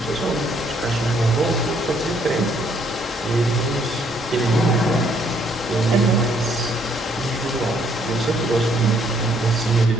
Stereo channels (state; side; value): normal; both; correlation 0.67